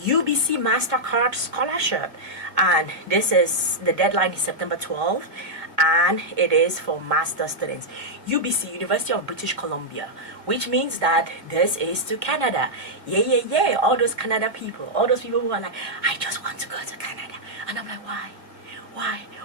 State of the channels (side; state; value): left; late; 1.9 ms